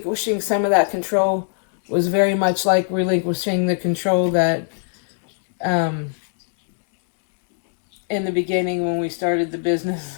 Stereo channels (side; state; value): right; silent; digital silence